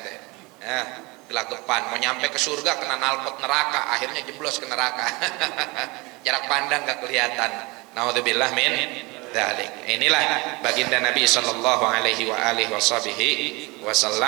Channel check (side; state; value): left; quieter; 25.2 dB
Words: Ya, gelagapan mau nyampe ke surga kena knalpot neraka, akhirnya jeblos ke neraka. Jarak pandang gak kelihatan. Naudzubillah min dzalik. Inilah baginda Nabi sallallahu alaihi